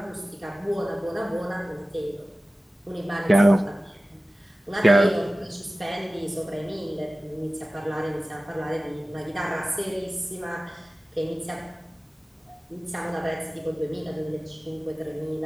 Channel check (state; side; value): normal; both; correlation 0.96